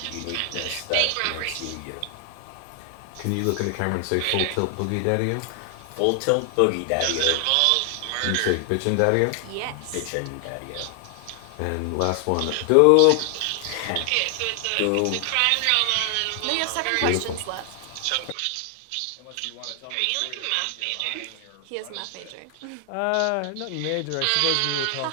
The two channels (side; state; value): both; different; correlation 0.00